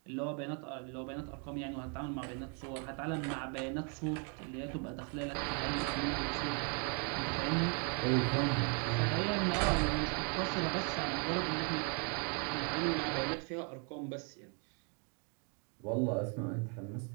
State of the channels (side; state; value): left; quieter; 36.0 dB